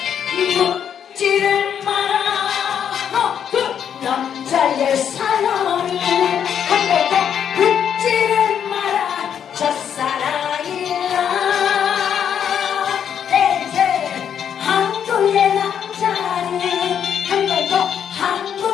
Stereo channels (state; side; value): quieter; right; 8.5 dB